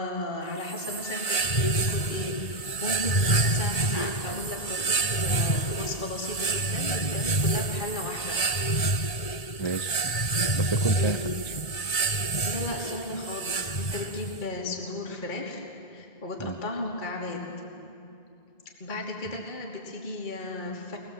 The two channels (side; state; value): right; late; 1.7 ms